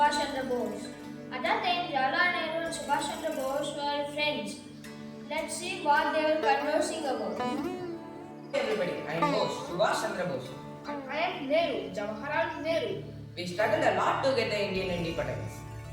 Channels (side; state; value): both; identical; correlation 1.00